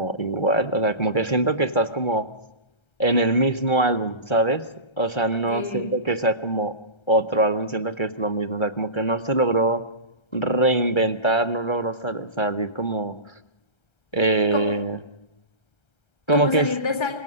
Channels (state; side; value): late; right; 1.3 ms